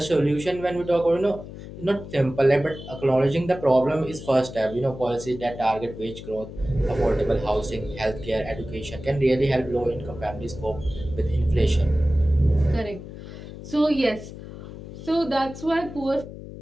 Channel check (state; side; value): noise; left; hum, 13 dB below the sound